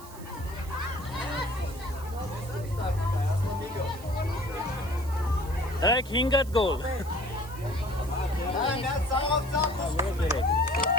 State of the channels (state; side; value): noise; right; hiss, 19 dB below the sound